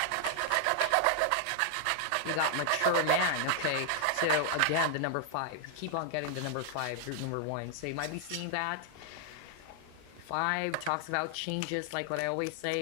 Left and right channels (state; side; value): different; both; correlation 0.00